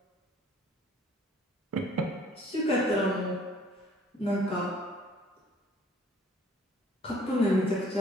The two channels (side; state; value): both; normal; correlation 0.57